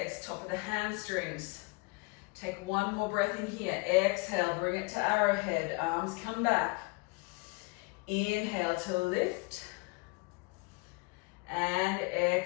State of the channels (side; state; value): right; quieter; 28.2 dB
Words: top of the hamstrings. Take one more breath in here. Exhale, bring it to arrowhead, arms come back. Inhale to lift. And